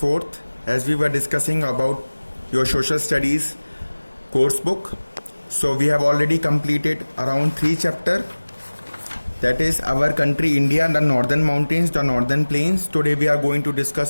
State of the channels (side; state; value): both; inverted; correlation -1.00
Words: As we were discussing about your social studies course book, so we have already completed around 3 chapter. That is our country India, the northern mountains, the northern plains. Today we are going to